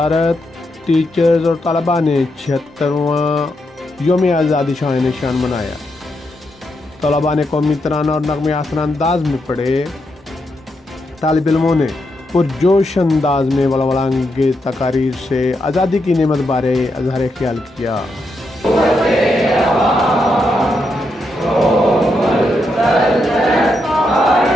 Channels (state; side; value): normal; both; correlation 0.82